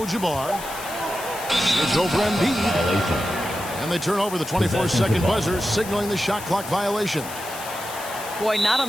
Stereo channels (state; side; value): noise; left; hiss, 12 dB below the sound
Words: It's over Embiid. And they turn over the 24-second buzzer, signaling the shot clock violation. Boy, not